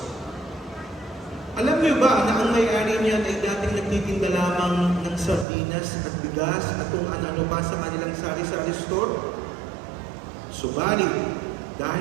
Alam niyo ba na ang may-ari niyan ay dating nagtitinda lamang ng sardinas at bigas at kung ano-ano pa sa kanilang sari-sari store? Subalit,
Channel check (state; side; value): drops out; left; at 5.5 s